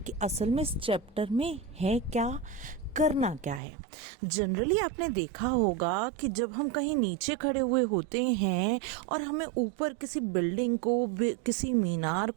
असल में इस चैप्टर में है क्या, करना क्या है। जनरली आपने देखा होगा कि जब हम कहीं नीचे खड़े हुए होते हैं और हमें ऊपर किसी बिल्डिंग को, किसी मीनार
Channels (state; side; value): drops out; left; at 3.6 s